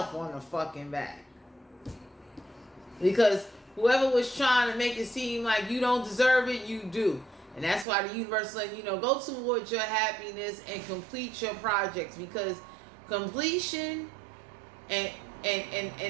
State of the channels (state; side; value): drops out; left; at 7.9 s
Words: on the fucking back. Because whoever was trying to make it seem like you don't deserve it, you do. And that's why the universe letting you know, go towards your happiness and complete your projects, because completion and